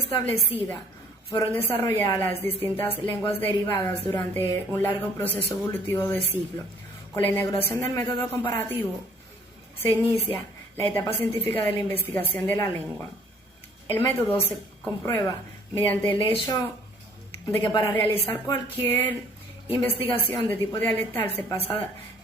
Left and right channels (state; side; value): normal; both; correlation 0.59